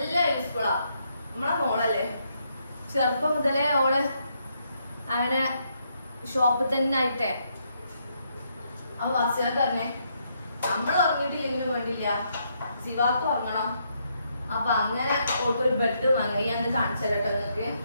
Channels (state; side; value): inverted; both; correlation -0.76